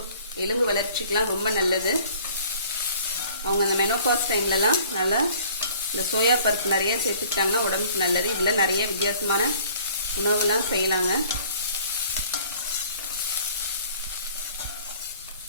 எலும்பு வளர்ச்சிக்கெலாம் ரொம்ப நல்லது. அவங்க அந்த மெனோபாஸ் டைம்லலாம் நல்லா இந்த சோயா பருப்பு நிறைய சேர்த்துக்கிட்டாங்கன்னா உடம்புக்கு நல்லது. இதில் நிறைய வித்தியாசமான உணவுலாம் செய்யலாங்க.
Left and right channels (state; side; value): inverted; both; correlation -0.54